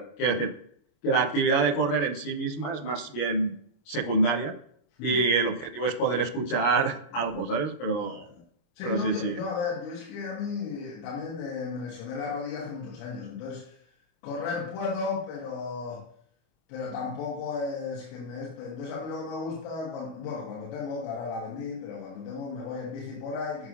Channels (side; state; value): right; late; 25 ms